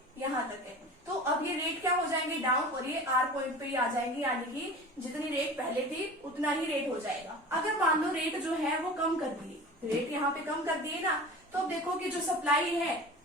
यहाँ तक है। तो अब ये रेट क्या हो जाएंगे, डाउन, और ये R पॉइंट पे ही आ जाएंगे, यानी कि जितनी रेट पहले थी उतना ही रेट हो जाएगा। अगर मान लो रेट जो है वो कम कर दिए, रेट यहाँ पे कम कर दिए ना, तो अब देखो कि जो सप्लाई है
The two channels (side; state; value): both; normal; correlation 0.36